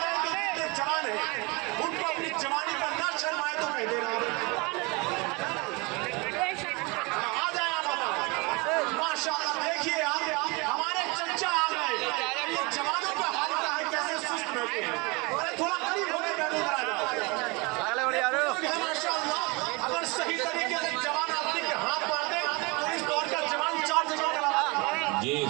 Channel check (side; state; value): left; quieter; 27.2 dB